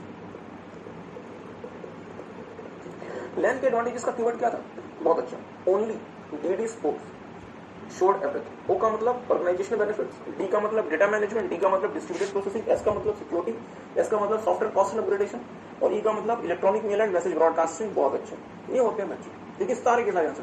लैन के एडवांटेजेस का कीवर्ड क्या था? बहुत अच्छा, only DD sports showed everything. O का मतलब ऑर्गेनाइजेशनल बेनिफिट्स, डी का मतलब डेटा मैनेजमेंट, डी का मतलब डिस्ट्रीब्यूटेड प्रोसेसिंग, एस का मतलब सिक्योरिटी, एस का मतलब सॉफ्टवेयर कॉस्ट एंड अपग्रेडेशन, और ई का मतलब electronic male and message broadcasting. बहुत अच्छा, ये होते हैं बच्चे। देखिए सारे के सारे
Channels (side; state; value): both; identical; correlation 1.00